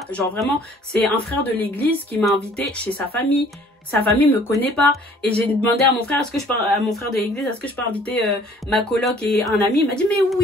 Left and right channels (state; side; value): normal; both; correlation 0.55